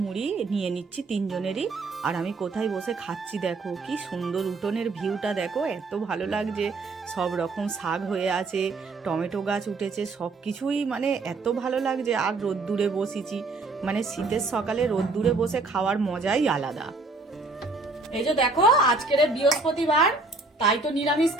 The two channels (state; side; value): quieter; left; 3.5 dB